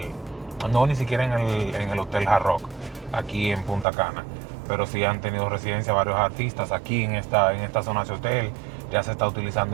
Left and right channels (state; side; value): drops out; left; at 3.9 s